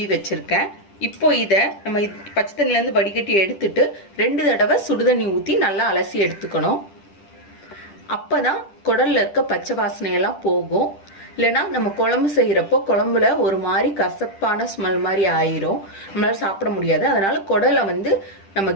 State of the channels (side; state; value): right; late; 10 ms